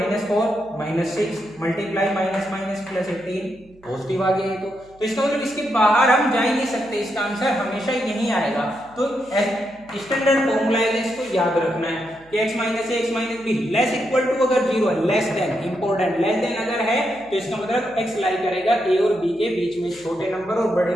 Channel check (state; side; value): noise; right; hum, 28 dB below the sound